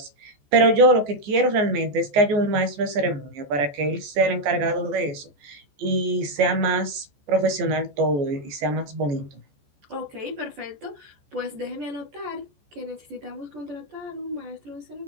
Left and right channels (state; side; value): late; left; 14 ms